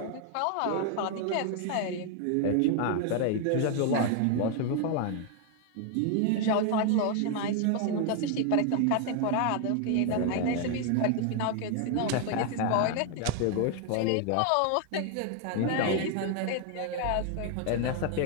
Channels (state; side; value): different; both; correlation 0.00